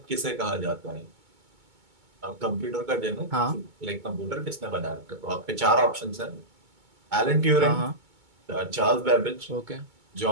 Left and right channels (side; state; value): left; late; 2.2 ms